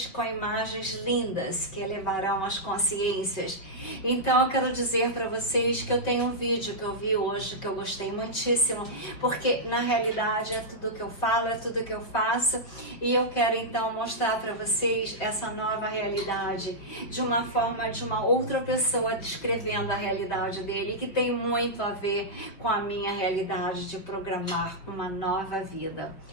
com imagens lindas que elevarão as consciências. Então, eu quero dizer para vocês que eu tenho um vídeo que eu vi hoje, que eu gostei muitíssimo, porque na realidade é tudo que eu falo, é tudo que eu faço, e eu quero então mostrar para vocês essa nova realidade, de uma forma de uma outra pessoa descrevendo a realidade dele, que tem muito a ver com a minha realidade de programar uma nova vida.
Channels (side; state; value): right; late; 5.4 ms